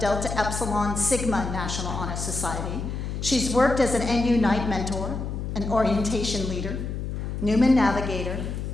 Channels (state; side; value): noise; left; hum, 4 dB below the sound